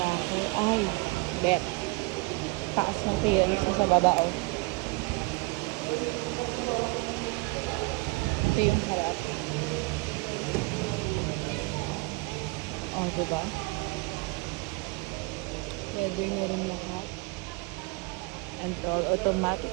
Ay, bet. Taas ng clearance mo sa baba, oh. Ito yung harap. Oh, diba? Leather na rin lahat. And all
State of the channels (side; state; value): left; quieter; 26.4 dB